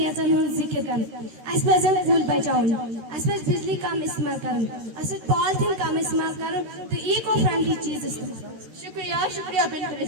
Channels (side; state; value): left; late; 13 ms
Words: हुन जिक्र कर अस पजन कूल बचाउन अस पज बिजली कम इस्तेमाल करन अस पॉलिथीन कम इस्तेमाल करन तो इको फ्रेंडली चीज इस्तेमाल। शुक्रिया बिंतुल